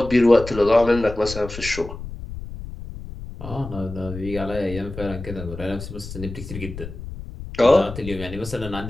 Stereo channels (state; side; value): noise; left; rumble, 11 dB below the sound